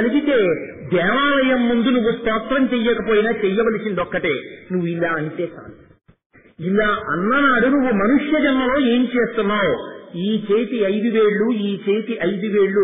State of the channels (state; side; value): identical; both; correlation 1.00